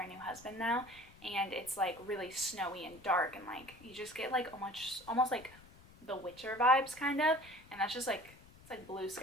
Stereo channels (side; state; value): left; noise; rumble, 23 dB below the sound